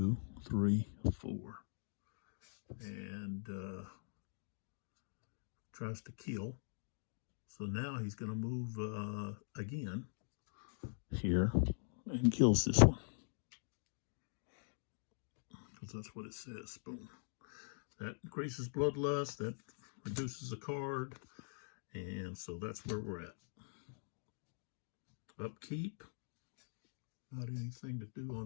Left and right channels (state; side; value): silent; right; digital silence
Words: 3, 4. And tries to kill. So now he's going to move again here and kills this one. Because that's what it says. Boom. That increases bloodlust. That reduces a card. And so that's where we're at. Upkeep. Not anything to do